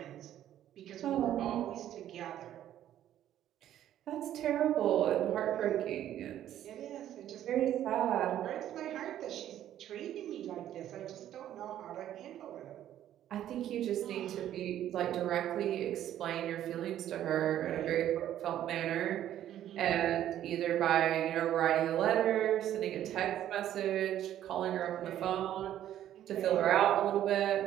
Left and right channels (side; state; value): left; quieter; 11.7 dB